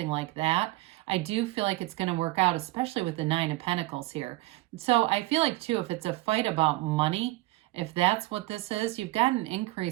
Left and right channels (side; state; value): left; quieter; 19.3 dB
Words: like that, I do feel like it's going to work out, especially with the Nine of Pentacles here. So I feel like too, if it's a fight about money, if that's what this is, you've got an